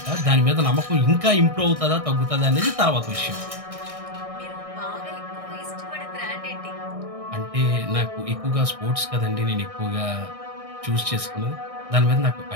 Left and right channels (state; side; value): late; left; 1.6 ms